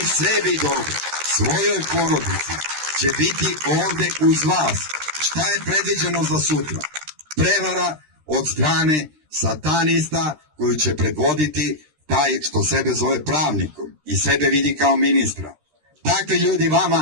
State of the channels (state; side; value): late; left; 13 ms